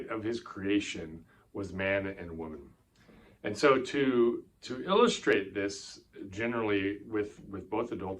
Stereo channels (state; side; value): identical; both; correlation 1.00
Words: of his creation was man and woman. And so to illustrate this generally with both